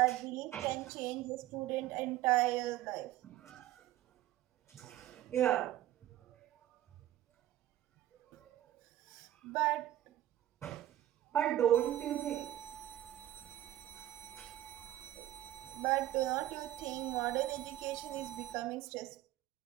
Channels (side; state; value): left; quieter; 13.9 dB